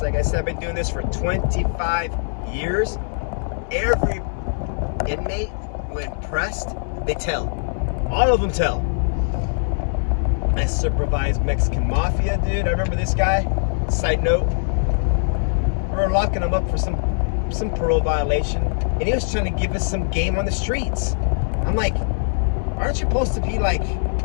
like I said, I've been doing this for 25 years. Every inmate, when pressed, they tell. All of them tell. I supervised Mexican mafia, dude. I remember this guy. Side note, we were locking him up for some parole violation, and he was trying to give us some game on the streets. I'm like, aren't you supposed to be like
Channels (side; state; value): right; silent; digital silence